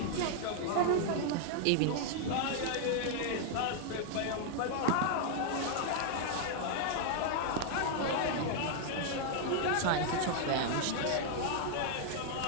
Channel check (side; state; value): both; different; correlation 0.00